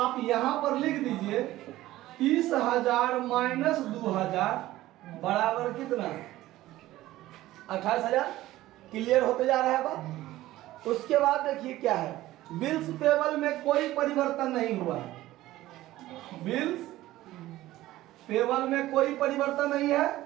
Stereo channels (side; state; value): left; quieter; 16.0 dB